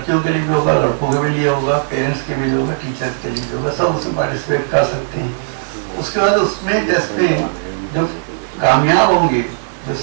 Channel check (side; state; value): left; silent; 66 dB below the other